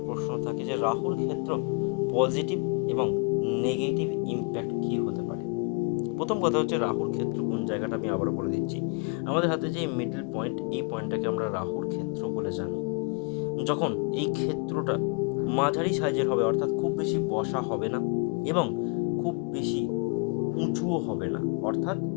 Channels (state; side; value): quieter; right; 33.6 dB